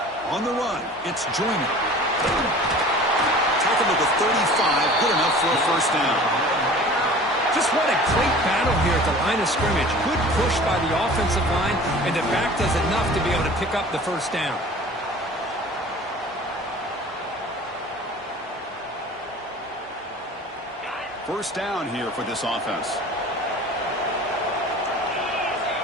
On the run, it's Joyner. Tackled at the 35, good enough for a first down. Just what a great battle here at the line of scrimmage. Good push by the offensive line, and the back does enough to be able to pick up the first down. First down here for this offense.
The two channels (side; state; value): both; normal; correlation 0.43